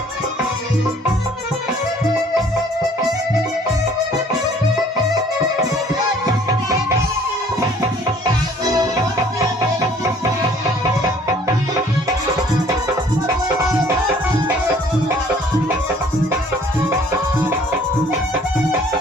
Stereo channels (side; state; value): both; normal; correlation 0.56